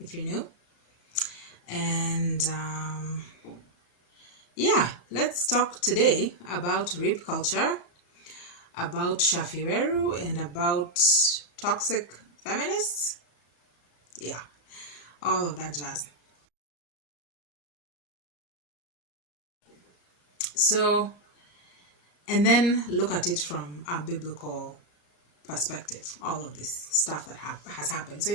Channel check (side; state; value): right; late; 33 ms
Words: you're new, and yeah, let's talk today about rape culture, about Shaffie Weru, and about toxic feminists. Yeah, all of that jazz. So, and then look at it from a biblical perspective, all of this stuff that has happened. So